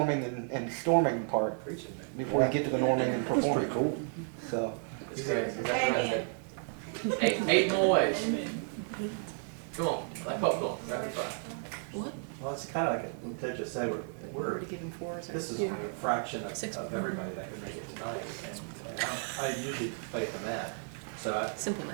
and storming part before you get to the norming and performing. Cool. So. It's great. Eight more ways. Come on, like popcorn, rapid fire. Well, it's kind of like what Ted just said, we're Already given 4. this is a fraction of everybody that could make it tonight. And I usually play at the mat, so Simple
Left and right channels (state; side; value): silent; left; 56 dB below the other